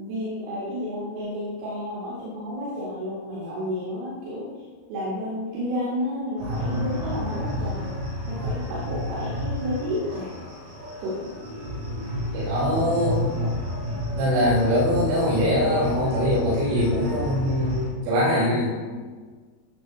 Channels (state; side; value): late; left; 37 ms